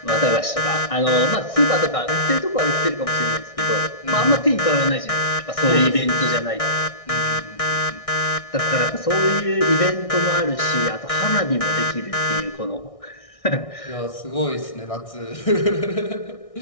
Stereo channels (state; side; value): late; right; 1.6 ms